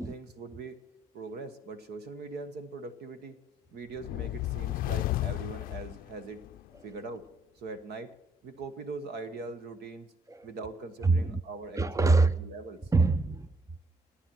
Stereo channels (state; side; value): normal; both; correlation 0.69